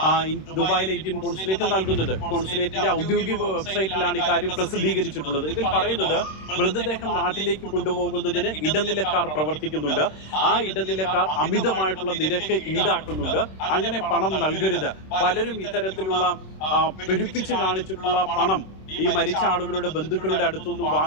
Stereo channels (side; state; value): right; late; 26 ms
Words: ദുബായിലെ ഇന്ത്യൻ കോൺസുലേറ്റ് നൽകുന്നത്. കോൺസുലേറ്റിന്റെ ഔദ്യോഗിക വെബ്സൈറ്റിലാണ് ഇക്കാര്യം പ്രസിദ്ധീകരിച്ചിട്ടുള്ളത്. ഇതിൽ പറയുന്നത് മൃതദേഹം നാട്ടിലേക്ക് കൊണ്ടുപോകുന്നതിന് ഇടനിലക്കാർ പ്രവർത്തിക്കുന്നുണ്ട്. ആ ഇടനിലക്കാർ അമിതമായിട്ടുള്ള നിരക്ക് ഈടാക്കുന്നുണ്ട്. അങ്ങനെ പണം നൽകരുത്. പലരും ഇത്തരത്തിലുള്ള പെരുപ്പിച്ച് കാണിച്ചിട്ടുള്ള പണം ഈ മരിച്ച ആളുകളുടെ ബന്ധുക്കളുടെ അടുത്തുനിന്ന്